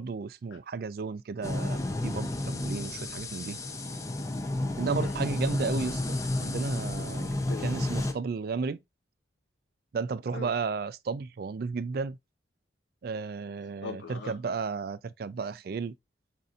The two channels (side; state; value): both; normal; correlation 0.50